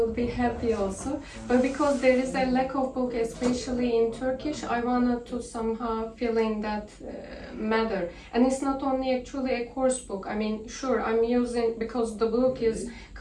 be happy also. But because there is a lack of book, especially in Turkish, I wanted to somehow fill in that matter. And it's not only actually a course book. I mean, sure, I'm using, because the book is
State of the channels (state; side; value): identical; both; correlation 1.00